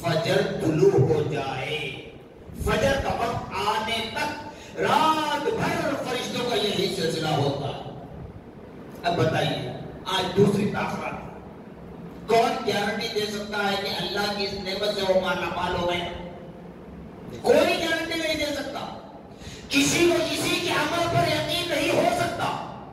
فجر طلوع ہو جائے، فجر کا وقت آنے تک رات بھر فرشتوں کا یہی سلسلہ ہوتا ہے۔ اب بتائیے آج دوسری تاخرات کون گارنٹی دے سکتا ہے کہ اللہ کی اس نعمت سے وہ مالا مال ہو گئے؟ کوئی گارنٹی نہیں دے سکتا، کسی کو کسی کے عمل پر یقین نہیں ہو سکتا۔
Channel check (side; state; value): both; identical; correlation 1.00